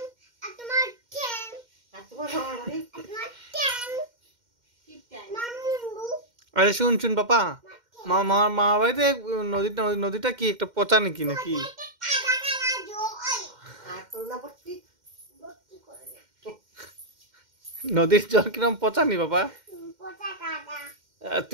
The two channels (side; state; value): left; late; 2.1 ms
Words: আর তোমার ঠ্যাং আর তোমার মামার বাড়ি তোমার ঠ্যাং কি টাইম মামুন্ডু আরে শুন পাপা মা বাড়িতে নদীটা কি একটা পচা নাকি নাকি কাদা কাদা জো ওই আর করোনা ভর্তি করোনা নদীর জল কিরম পচা নি বাবা পোটা কাদা